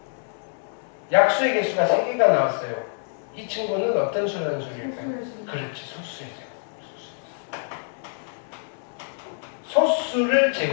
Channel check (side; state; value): right; silent; 61 dB below the other